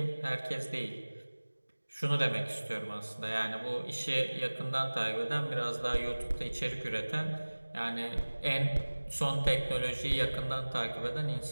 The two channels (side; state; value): both; inverted; correlation -1.00